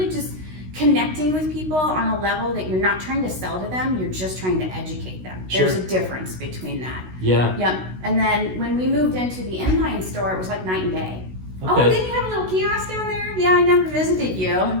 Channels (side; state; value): left; late; 16 ms